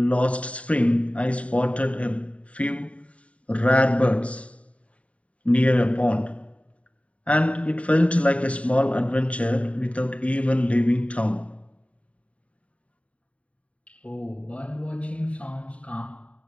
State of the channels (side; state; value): right; late; 0.065 ms